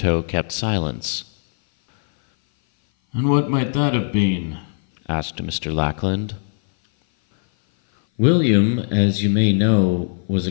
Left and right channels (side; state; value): right; silent; 58 dB below the other